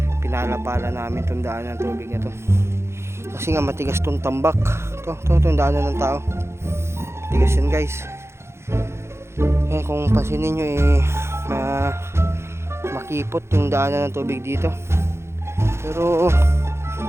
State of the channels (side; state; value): left; late; 0.13 ms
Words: pinalapala namin itong daan ng tubig na to kasi nga matigas tong tambak. Itong daanan ng tao, matigas yan guys. Kung pansinin nyo makipot yung daanan ng tubig dito, pero